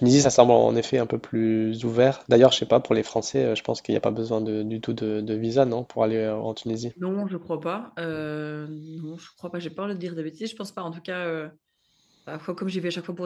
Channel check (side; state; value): both; identical; correlation 1.00